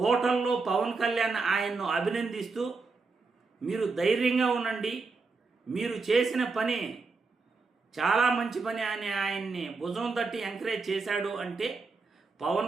పవన్ కళ్యాణ్ ఆయన్ను అభినందిస్తూ మీరు ధైర్యంగా ఉండండి, మీరు చేసిన పని చాలా మంచి పని అని ఆయన్ని భుజం తట్టి ఎంకరేజ్ చేశాడు అంటే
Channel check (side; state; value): left; quieter; 4.2 dB